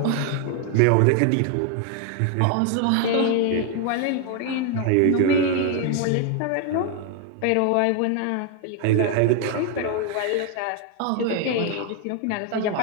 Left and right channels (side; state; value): both; different; correlation 0.01